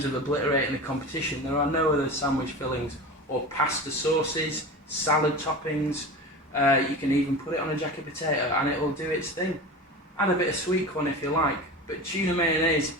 of obliterating the competition. There are no other sandwich fillings or pasta sauces, salad toppings. You can even put it on a jacket potato and it will do its thing. Add a bit of sweet corn if you like. But tuna mayonnaise,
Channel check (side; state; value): both; normal; correlation 0.30